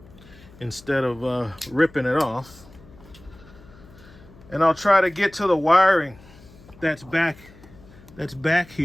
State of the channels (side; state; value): left; noise; hum, 23 dB below the sound